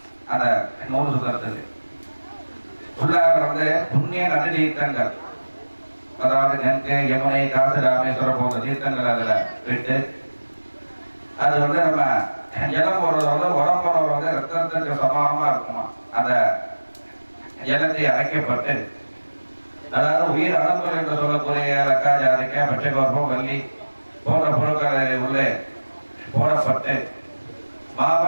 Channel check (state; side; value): inverted; both; correlation -1.00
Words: அந்த நூல் சுத்துறதுக்கு உள்ளாக வந்து புண்ணிய நதி தீர்த்தங்கள் அதாவது கங்கை யமுனை காசி ராமேஸ்வரம் போன்ற தீர்த்தங்கள் அதில் விட்டு அது வந்து நம்ம ஜலம் போடுறது வந்து உடம்போட வந்து ரத்தத்துக்கு சமானமா இருக்குமா. அந்த ஜலத்தை அரைக்கப்பட்டு அதாவது உயிர் அணுக்கள் என்று சொல்லக்கூடிய லக்கா ஜாதிக்காய் பச்சைகோர்பம் வள்ளி போன்ற பொருட்களை உள்ளே போடப்பட்டு